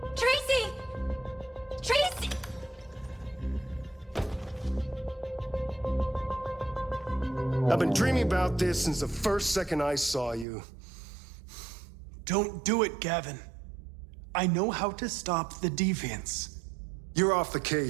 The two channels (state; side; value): drops out; left; at 10.5 s